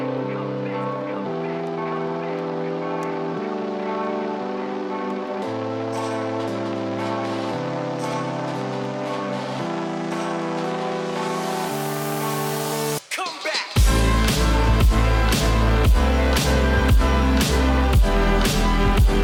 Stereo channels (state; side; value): identical; both; correlation 1.00